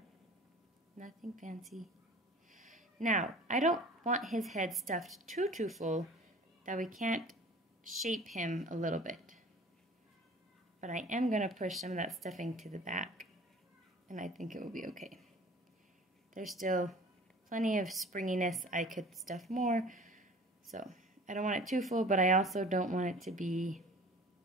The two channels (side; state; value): both; normal; correlation 0.45